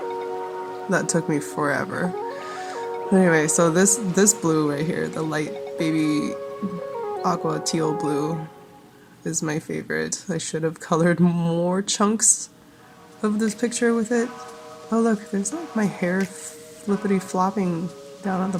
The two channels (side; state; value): both; identical; correlation 1.00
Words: That took me forever. Anyway, so this blue right here, the light baby aqua teal blue, is my favorite. I should have colored more chunks of this picture with it. Oh look, there's like my hair flippity flopping down at the